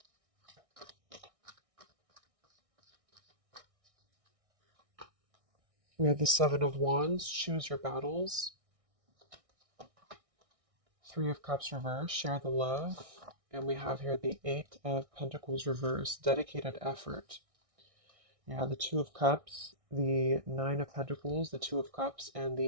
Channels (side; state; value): left; late; 1.6 ms